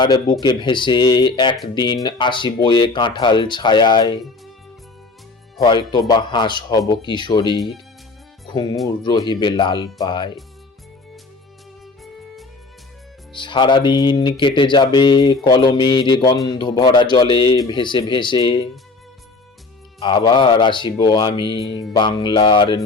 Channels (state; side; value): quieter; right; 3.7 dB